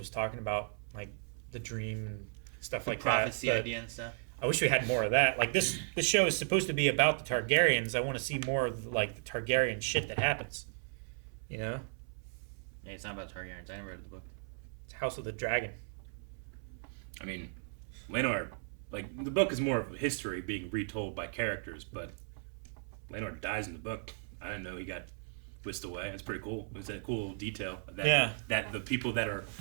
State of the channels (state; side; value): silent; left; 54 dB below the other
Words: talking about, like, the dream and stuff like prophecy that. idea and stuff. I wish we had more of that. Like, this show is supposed to be about the Targaryens. I want to see more of, like, the Targaryen shit that happens. You know? Yeah, it's not about Targaryens. I never read the book. It's House of the Dragon. I mean, Laenor, like, the book is more of history being retold by characters, but Laenor dies in the book. I didn't know he got whisked away. That's pretty cool. It was a cool detail. That the people that are